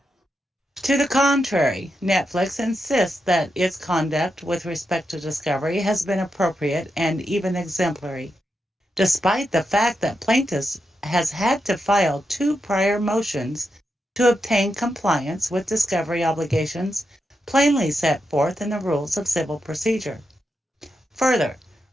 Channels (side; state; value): both; normal; correlation 0.85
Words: To the contrary, Netflix insists that its conduct with respect to discovery has been appropriate and even exemplary, despite the fact that plaintiff has had to file 2 prior motions to obtain compliance with discovery obligations plainly set forth in the rules of civil procedure. Further,